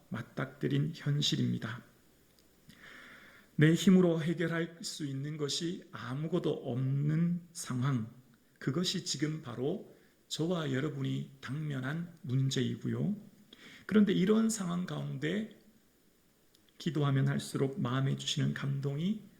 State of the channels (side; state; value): both; identical; correlation 1.00